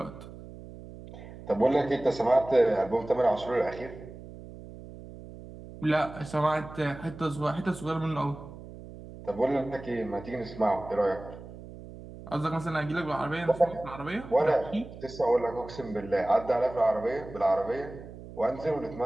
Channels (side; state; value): right; noise; hum, 15 dB below the sound